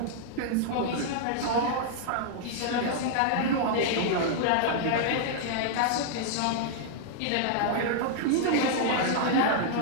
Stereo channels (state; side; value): different; both; correlation -0.01